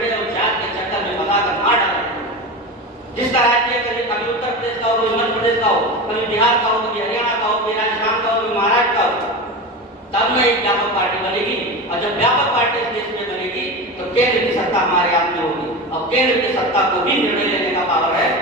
और जात के चक्कर में फंसा कर मार डाला। जिसका राष्ट्रीय कभी उत्तर प्रदेश का हो, कभी मध्य प्रदेश का हो, कभी बिहार का हो, कभी हरियाणा का हो, कभी राजस्थान का हो, कभी महाराष्ट्र का हो, तब में एक व्यापक पार्टी बनेगी। और जब व्यापक पार्टी इस देश में बनेगी तो केंद्र की सत्ता हमारे हाथ में होगी, और केंद्र की सत्ता को भी निर्णय लेने का पावर है।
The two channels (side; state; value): both; normal; correlation 0.25